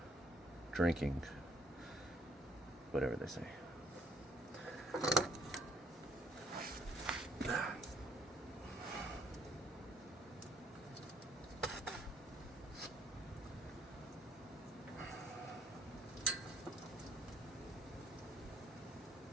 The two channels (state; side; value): normal; both; correlation 0.64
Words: drinking. Whatever they say.